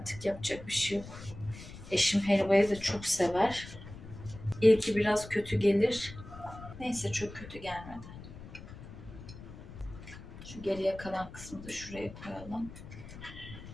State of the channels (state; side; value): noise; left; rumble, 14 dB below the sound